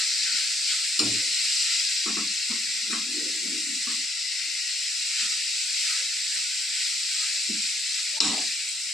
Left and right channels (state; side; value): normal; both; correlation 0.69